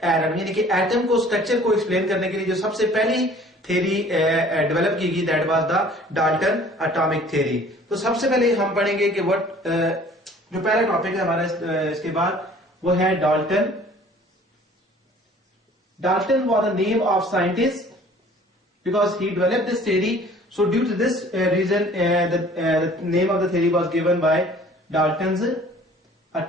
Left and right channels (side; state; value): both; normal; correlation 0.51